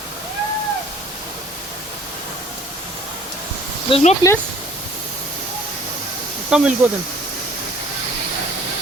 There's no place? Come, we'll go then.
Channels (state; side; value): normal; both; correlation 0.54